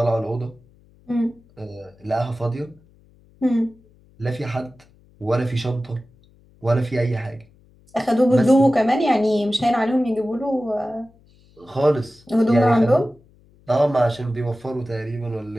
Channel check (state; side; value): noise; left; hum, 30 dB below the sound